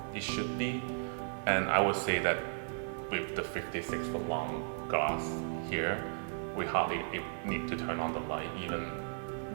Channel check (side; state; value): left; silent; digital silence